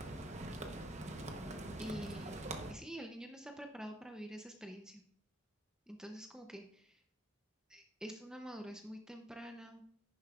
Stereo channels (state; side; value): normal; both; correlation 0.70